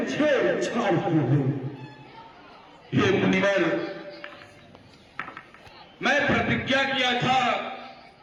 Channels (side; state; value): both; identical; correlation 1.00